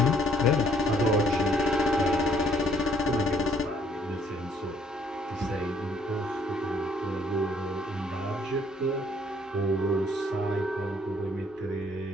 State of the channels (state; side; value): normal; both; correlation 0.64